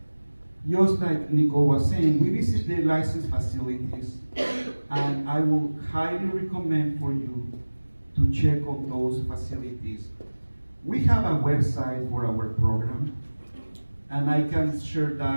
just like Nicole was saying, we visit the licensed facilities, and I will highly recommend for you to check on those facilities. We have a website for our program, and I can share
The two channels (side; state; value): both; inverted; correlation -1.00